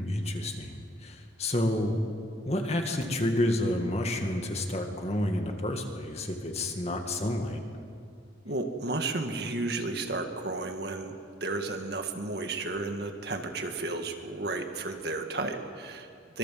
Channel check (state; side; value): normal; both; correlation 0.55